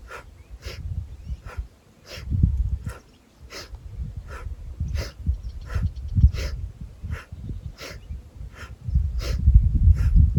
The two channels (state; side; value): identical; both; correlation 1.00